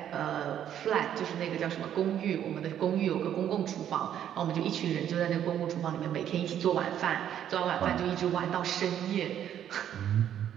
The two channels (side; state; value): left; quieter; 10.2 dB